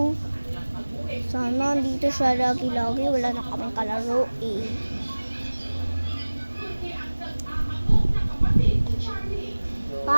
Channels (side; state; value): both; inverted; correlation -1.00